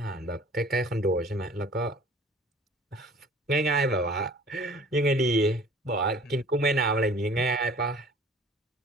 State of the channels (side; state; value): both; normal; correlation 0.49